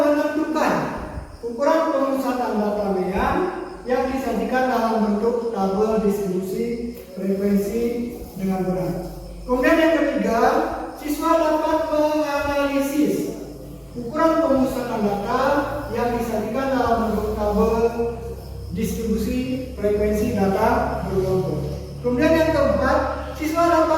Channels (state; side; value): identical; both; correlation 1.00